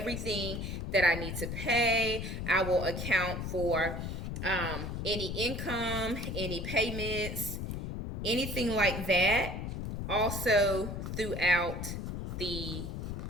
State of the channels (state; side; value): noise; left; rumble, 4 dB below the sound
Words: that I need to pay. I will account for any income, any payments, anything like that, also throughout the